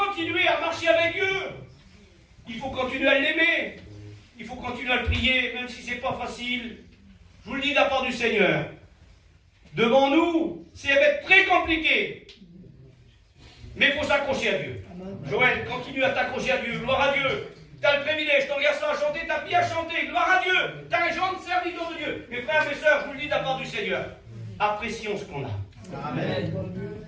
à marcher avec Dieu. Il faut continuer à l'aimer. Il faut continuer à le prier, même si ce n'est pas facile. Je vous le dis de la part du Seigneur. Devant nous, ça va être très compliqué. Mais il faut s'accrocher à Dieu. Joël, continue à t'accrocher à Dieu. Gloire à Dieu. Tu as le privilège, ton garçon a chanté, ta fille a chanté. Gloire à Dieu. Tu as un jeune serviteur de Dieu. Mes frères, mes sœurs, je vous le dis de la part du Seigneur. Apprécions ce qu'on a. Amen.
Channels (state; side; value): identical; both; correlation 1.00